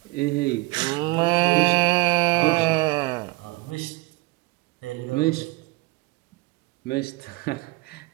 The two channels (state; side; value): quieter; left; 23.5 dB